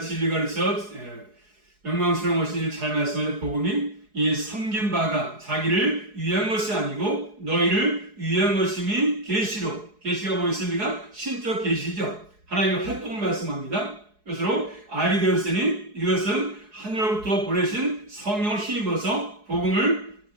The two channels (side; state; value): left; late; 4.7 ms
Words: 그래서 영광스러운 것인지 잘 말씀하는 복음이 이 섬긴 바가 자기를 위한 것이 아니고 너희를 위한 것임이 계시로. 계시가 뭐였습니까? 신적 계시죠. 하나님의 활동을 말씀합니다. 그것으로 알게 되었으니 이것은 하늘로부터 보내신 성령을 힘입어서 복음을